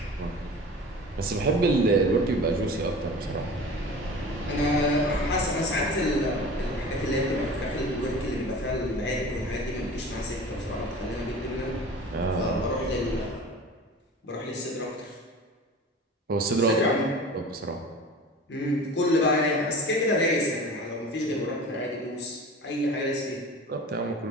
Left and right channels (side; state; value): both; normal; correlation 0.38